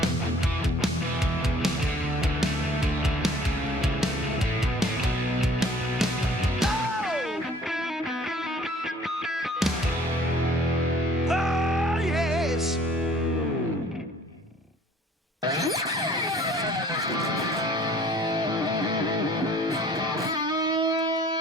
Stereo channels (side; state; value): both; normal; correlation 0.54